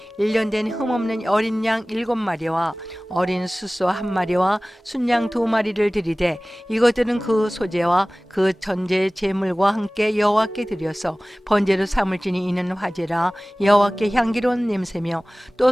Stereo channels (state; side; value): normal; both; correlation 0.98